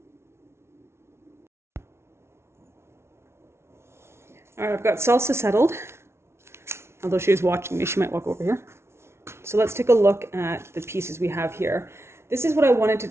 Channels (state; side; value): late; left; 0.13 ms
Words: All right, I've got salsa settled. Although she was watching me, she might walk over here. So let's take a look at the pieces we have here. This is what I wanted to